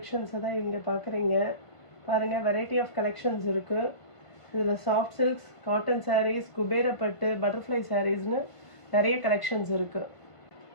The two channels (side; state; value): right; late; 1.5 ms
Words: தான் இங்க பார்க்குறீங்க. பாருங்க variety of collections இருக்கு. இதுல soft silks, cotton sarees, Kubera பட்டு, butterfly sareesனு நிறைய collections இருக்கு.